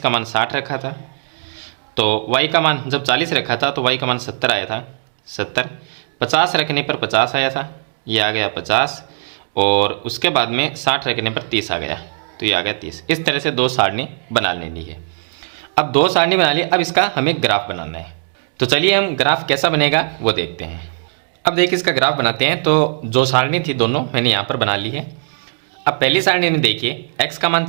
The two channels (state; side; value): silent; left; digital silence